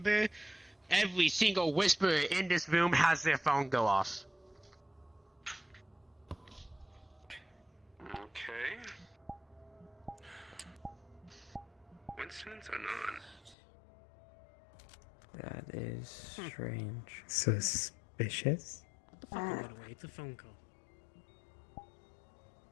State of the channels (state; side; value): drops out; right; at 13.6 s